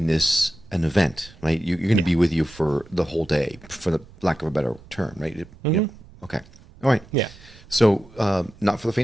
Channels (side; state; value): right; noise; rumble, 23 dB below the sound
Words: this an event, right? You're going to be with you for the whole day, for the lack of a better term, right? You know, okay. All right. Yeah. So, not for the